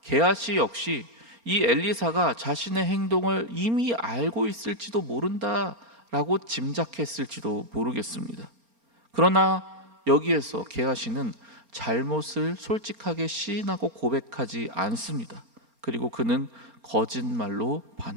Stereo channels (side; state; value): left; late; 4.3 ms